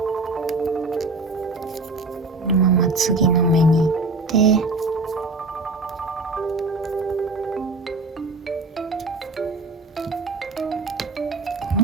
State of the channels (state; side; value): quieter; left; 3.3 dB